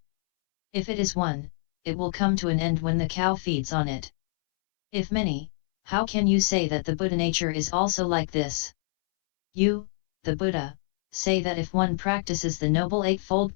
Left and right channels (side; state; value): right; silent; 61 dB below the other